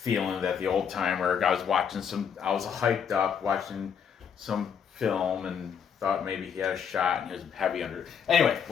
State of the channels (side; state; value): right; quieter; 7.4 dB